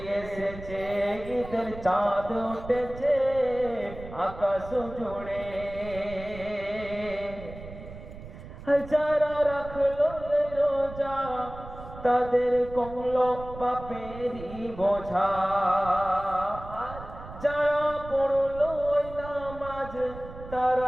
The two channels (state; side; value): noise; right; rumble, 14 dB below the sound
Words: এসেছে। ঈদের চাঁদ উঠেছে আকাশ জুড়ে। যারা রাখলো রোজা তাদের কমলো পাপেরই বোঝা। যারা পড়লো নামাজ